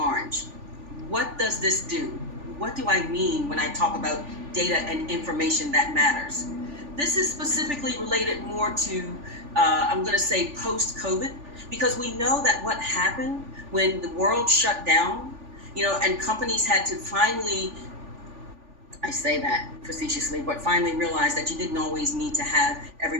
What does this do? What do I mean when I talk about data and information that matters? This is specifically related more to, I'm going to say, post-COVID, because we know that what happened when the world shut down, and companies had to finally, I say that facetiously, but finally realized that you didn't always need to have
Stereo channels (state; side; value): late; left; 3.4 ms